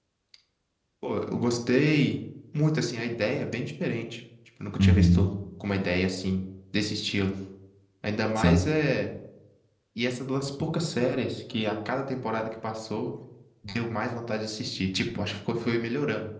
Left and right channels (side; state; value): both; identical; correlation 1.00